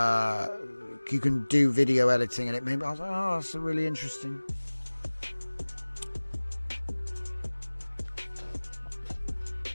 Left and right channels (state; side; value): inverted; both; correlation -1.00